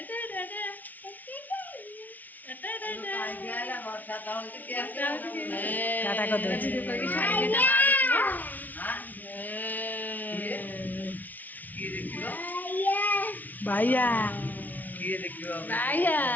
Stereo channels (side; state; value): right; late; 0.080 ms